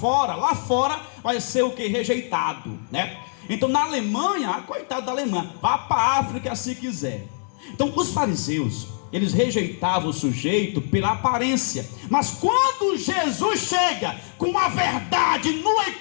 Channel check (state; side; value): silent; right; digital silence